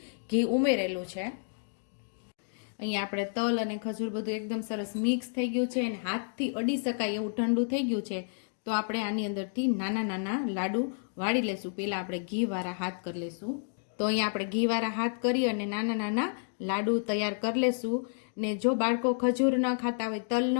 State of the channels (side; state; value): right; silent; digital silence